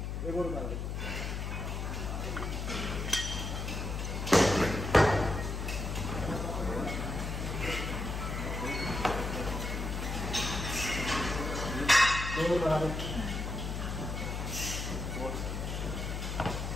एक और उतार दो।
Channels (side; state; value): left; noise; hum, 3 dB below the sound